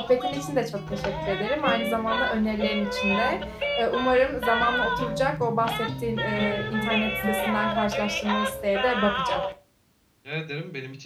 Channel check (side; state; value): both; identical; correlation 1.00